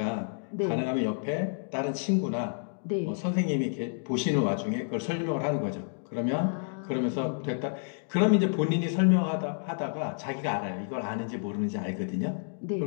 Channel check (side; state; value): right; silent; digital silence